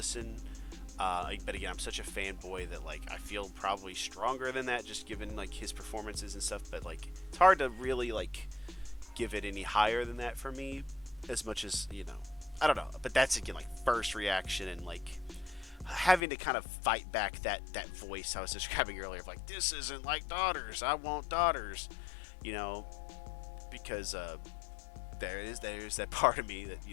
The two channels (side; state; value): right; drops out; at 16.2 s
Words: But again, I'm such a fanboy that like I feel probably stronger than that, just given like his performances and stuff. But like it's hard to really like give it any higher than that for me, as much as I don't know. But that's again like first reaction and like having to kind of fight back that voice I was describing earlier of like, this isn't like Daughters. I want Daughters, you know, because there's that part of me that